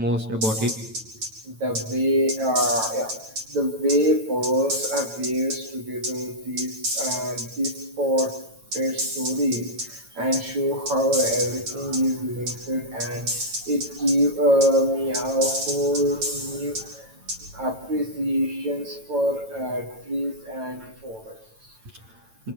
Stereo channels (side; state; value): left; late; 9.0 ms